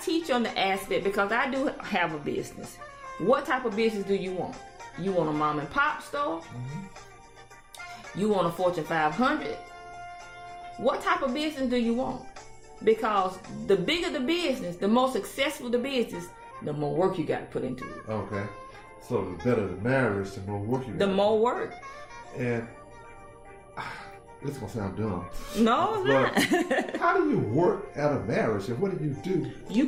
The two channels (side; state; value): both; identical; correlation 1.00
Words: teach on the aspect, because I do have a business. What type of business do you want? You want a mom and pop store? You want a Fortune 500? What type of business do you want? Because the bigger the business, the more successful the business, the more work you got to put into it. Okay. So the better the marriage, the more work you got. The more work. And this is gonna sound dumb. No, it's not. How do you work at a marriage, and what do you do? You